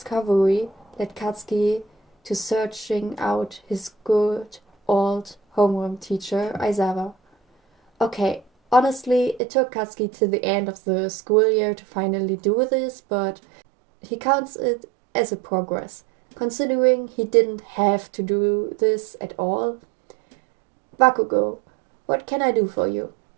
led Katsuki to searching out his good old homeroom teacher, Aizawa. Okay, honestly, it took Katsuki to the end of the school year to finally do this, but he counts it as a progress, considering he didn't have to do this at all. Bakugo, what can I do for you?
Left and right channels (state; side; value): drops out; left; at 9.4 s